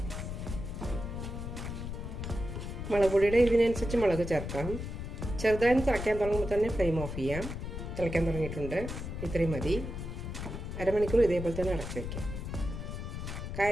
മുളക് പൊടിയുടെ ഇതിനനുസരിച്ച് മുളക് ചേർക്കാം. ചെറുതായി തിളയ്ക്കാൻ തുടങ്ങുമ്പോൾ തന്നെ ഫ്ലെയിം ഓഫ് ചെയ്യാം. തിളയ്ക്കാൻ തുടങ്ങിയിട്ടുണ്ട്. ഇത്രയും മതി. അരമണിക്കൂർ ഇതേപോലെ തന്നെ അടച്ചു വയ്ക്കാം.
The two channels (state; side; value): noise; left; rumble, 6 dB below the sound